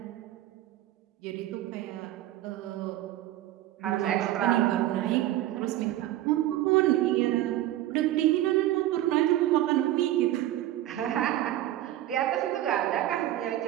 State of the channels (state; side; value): quieter; left; 14.0 dB